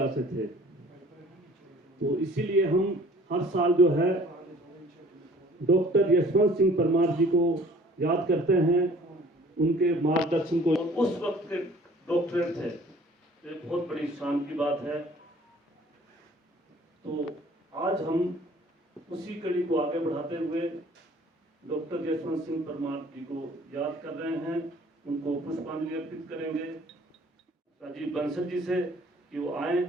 से थे, तो इसीलिए हम हर साल जो है डॉक्टर यशवंत सिंह परमार जी को याद करते हैं, उनके मार्गदर्शन को। उस वक्त के डॉक्टरेट थे, तो एक बहुत बड़ी शान की बात है। तो आज हम उसी कड़ी को आगे बढ़ाते हुए डॉक्टर यशवंत सिंह परमार जी को याद कर रहे हैं, उनको पुष्पांजलि अर्पित करेंगे राजीव बंसल जी से कि वो आए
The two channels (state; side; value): normal; both; correlation 0.52